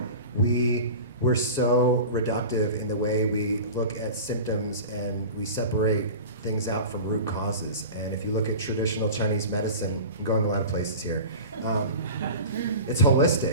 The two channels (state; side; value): inverted; both; correlation -0.33